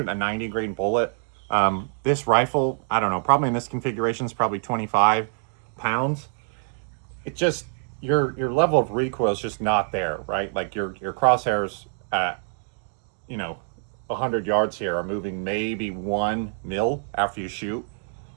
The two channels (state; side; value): silent; left; 60 dB below the other